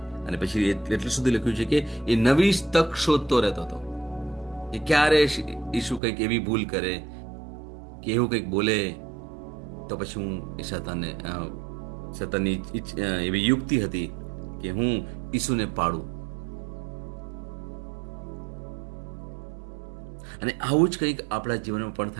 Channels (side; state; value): left; drops out; at 6.0 s